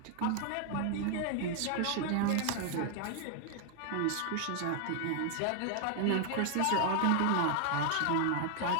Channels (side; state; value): both; different; correlation 0.00